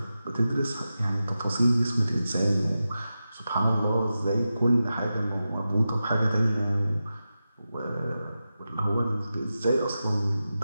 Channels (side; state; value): both; inverted; correlation -0.92